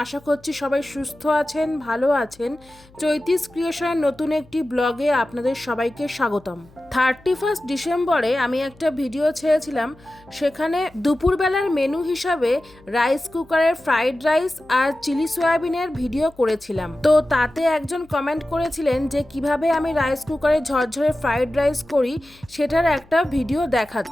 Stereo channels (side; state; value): left; noise; hum, 27 dB below the sound